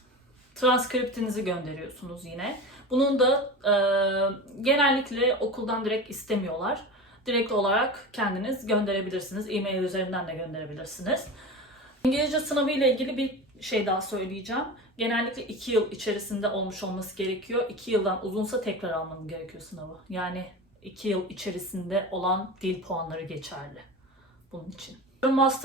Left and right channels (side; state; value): both; normal; correlation 0.29